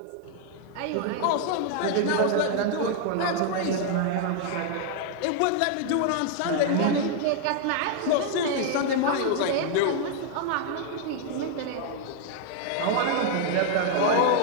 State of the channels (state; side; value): different; both; correlation 0.00